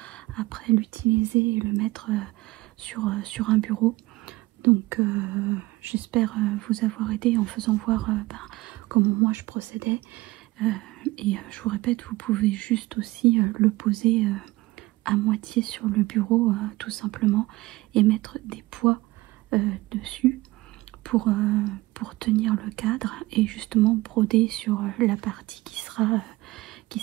après l'utiliser et le mettre sur un bureau. Donc j'espère vous avoir aidé en faisant voir comment moi je procédais. Et je vous répète, vous pouvez juste aussi le poser à moitié sur le bureau tout simplement et mettre des poids dessus pour tenir le cadre et justement broder sur la partie qui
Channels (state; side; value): quieter; left; 20.1 dB